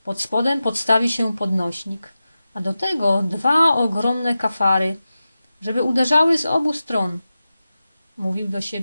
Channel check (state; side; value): inverted; both; correlation -0.93